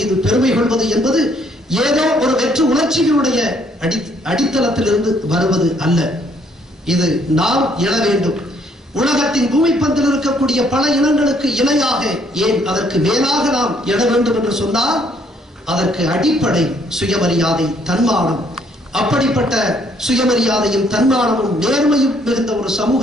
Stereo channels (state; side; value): normal; both; correlation 0.66